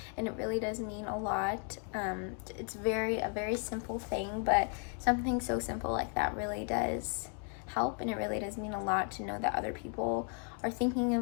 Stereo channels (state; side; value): quieter; right; 39.7 dB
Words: it really does mean a lot. It's a very simple thing, but something so simple like that really does help, and it really does mean a lot to know that other people are thinking